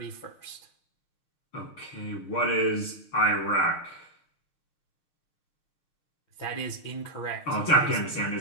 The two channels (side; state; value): right; late; 6.6 ms